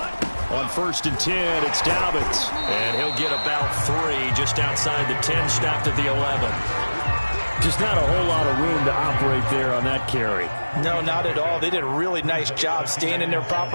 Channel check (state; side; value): inverted; both; correlation -1.00